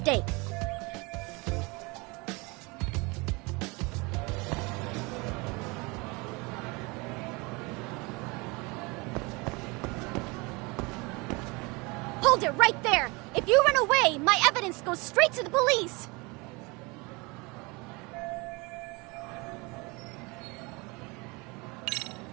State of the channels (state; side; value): quieter; left; 26.5 dB